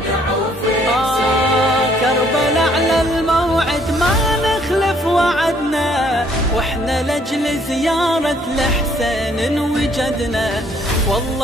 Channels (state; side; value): normal; both; correlation 0.64